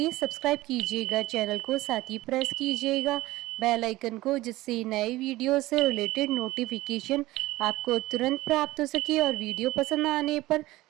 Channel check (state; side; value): quieter; left; 18.0 dB